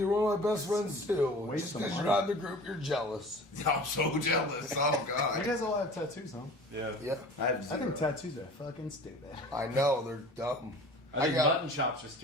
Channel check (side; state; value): both; normal; correlation 0.41